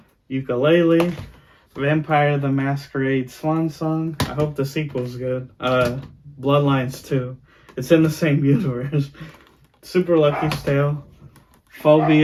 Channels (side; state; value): both; identical; correlation 1.00